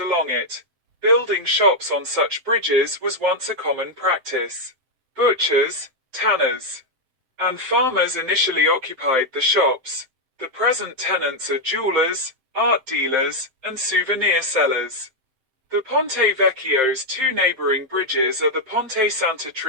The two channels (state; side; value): late; left; 7.6 ms